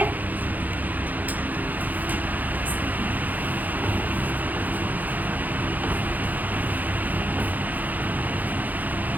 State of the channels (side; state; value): left; late; 0.082 ms